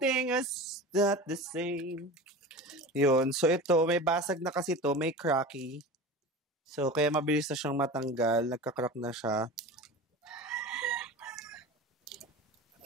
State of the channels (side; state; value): both; normal; correlation 0.32